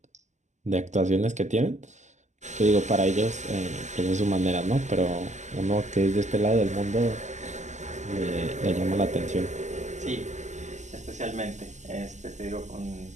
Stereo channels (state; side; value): late; left; 0.34 ms